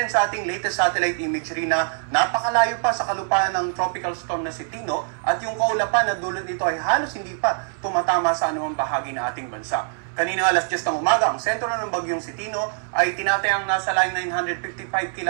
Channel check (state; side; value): silent; left; digital silence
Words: sa ating latest satellite imagery na napakalayo pa sa kalupaan ng tropical storm na Tino at yung kaulapan na dulot nito ay halos hindi pa tumatama sa anumang bahagi ng ating bansa. Kanina alas 10 ng umaga, ang sentro ng bagyong Tino ay tinatayang nasa line 955